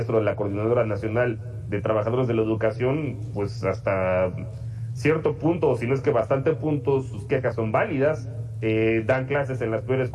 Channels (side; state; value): both; identical; correlation 1.00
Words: de la Coordinadora Nacional de Trabajadores de la Educación, pues hasta cierto punto, o si no es que bastante puntos, sus quejas son válidas, dan clases en las peores